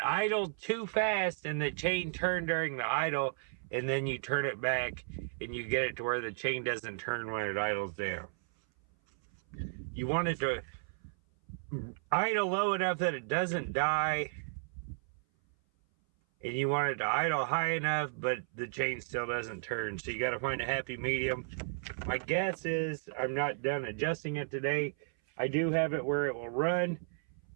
idled too fast and the chain turned during the idle, and then you turn it back and you get it to where the chain doesn't turn when it idles down. You want it to idle low enough that it doesn't die, and you want it to idle high enough but the chain still doesn't turn. So you got to find a happy medium. My guess is I'm not done adjusting it today. I do have it where it will run,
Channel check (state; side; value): silent; left; 55 dB below the other